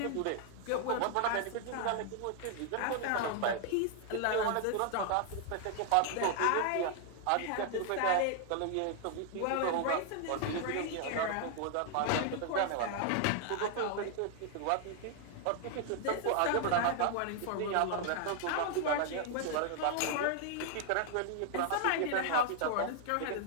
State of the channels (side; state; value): both; different; correlation 0.00